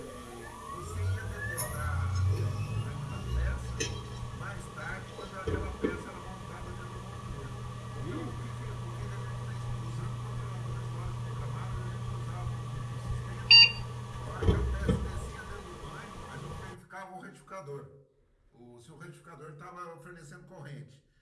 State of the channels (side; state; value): both; identical; correlation 1.00